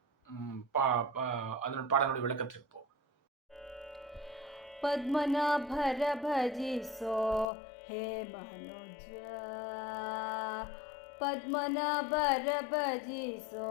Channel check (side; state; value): right; drops out; at 7.5 s